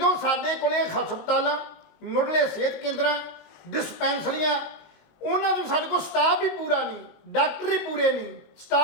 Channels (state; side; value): late; right; 19 ms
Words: ਸਾਡੇ ਕੋਲੇ ਹਸਪਤਾਲਾਂ, ਮੁੱਢਲੇ ਸਿਹਤ ਕੇਂਦਰਾਂ, ਡਿਸਪੈਂਸਰੀਆਂ, ਉਹਨਾਂ ਨੂੰ ਸਾਡੇ ਕੋਲ ਸਟਾਫ ਵੀ ਪੂਰਾ ਨਹੀਂ, ਡਾਕਟਰ ਹੀ ਪੂਰੇ ਨਹੀਂ,